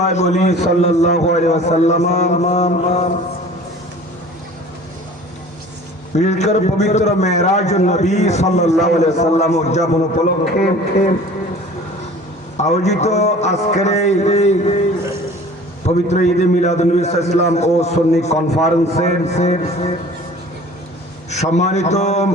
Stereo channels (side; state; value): both; normal; correlation 0.45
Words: বলি সাল্লাল্লাহু আলাইহি ওয়াসাল্লাম বিশেষ করে পবিত্র মেরাজুন নবী সাল্লাল্লাহু আলাইহি ওয়াসাল্লাম উদযাপন উপলক্ষে আয়োজিত আজকের এই পবিত্র ঈদে মিলাদুন নবী সাল্লাল্লাহু ও সুন্নি কনফারেন্সের সম্মানিত